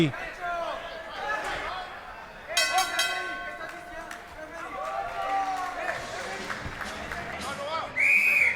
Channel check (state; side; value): identical; both; correlation 1.00